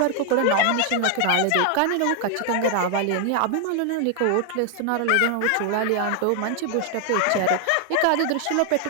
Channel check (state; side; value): different; both; correlation 0.00